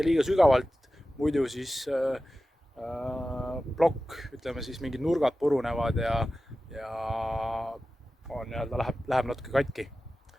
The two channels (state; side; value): normal; both; correlation 0.94